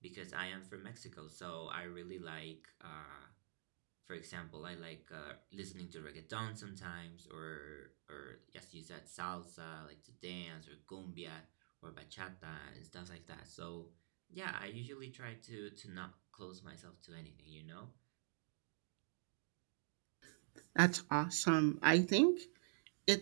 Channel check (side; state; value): left; silent; digital silence